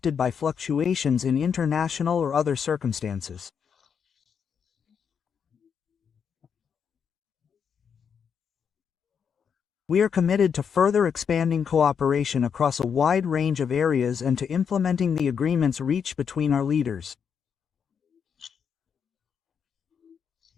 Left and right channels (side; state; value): right; quieter; 7.1 dB